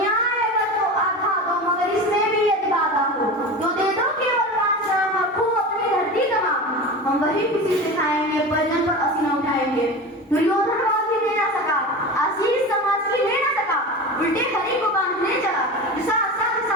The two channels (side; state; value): both; normal; correlation 0.29